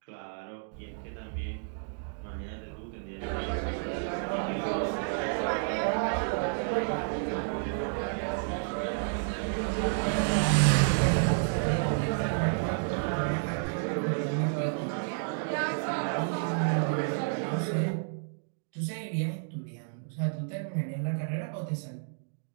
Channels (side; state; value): left; silent; digital silence